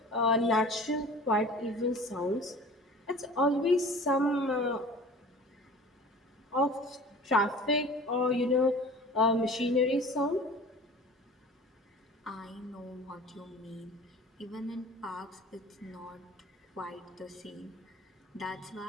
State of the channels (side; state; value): both; normal; correlation 0.42